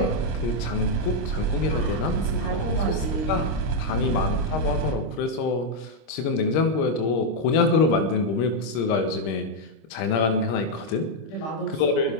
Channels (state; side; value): late; right; 26 ms